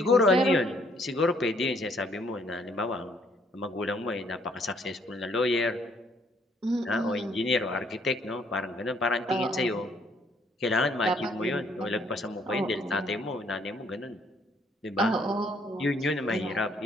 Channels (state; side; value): normal; both; correlation 0.65